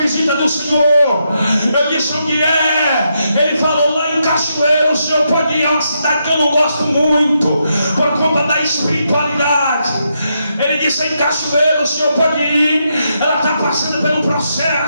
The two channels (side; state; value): both; inverted; correlation -0.81